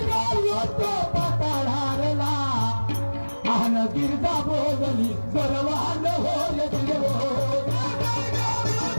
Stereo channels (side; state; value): both; inverted; correlation -1.00